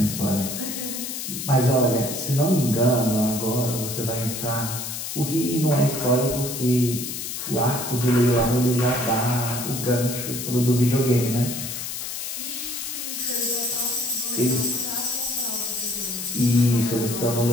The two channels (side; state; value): left; noise; hiss, 6 dB below the sound